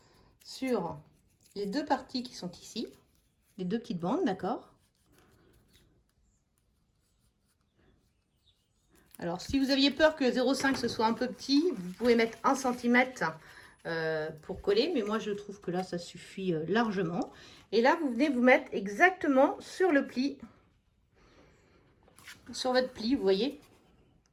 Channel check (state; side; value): identical; both; correlation 1.00